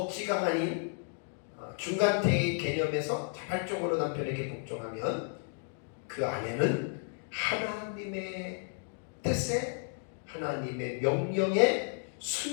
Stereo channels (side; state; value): right; silent; 56 dB below the other